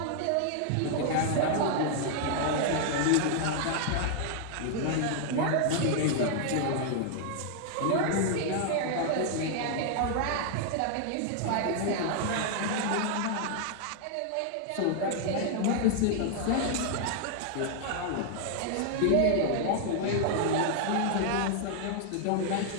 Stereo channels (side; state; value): both; different; correlation 0.00